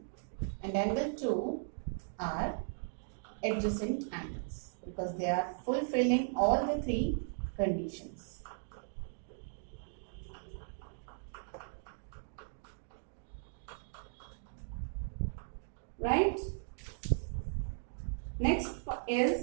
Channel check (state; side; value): silent; left; digital silence